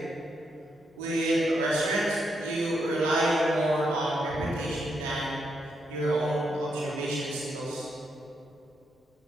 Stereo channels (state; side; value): normal; both; correlation 0.80